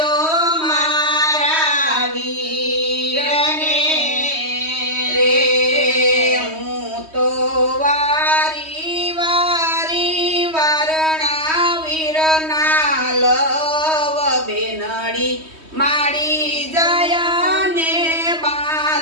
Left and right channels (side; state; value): left; late; 3.1 ms